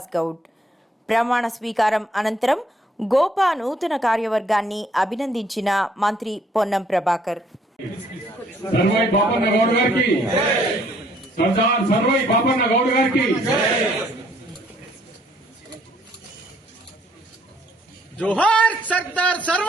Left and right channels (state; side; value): normal; both; correlation 0.64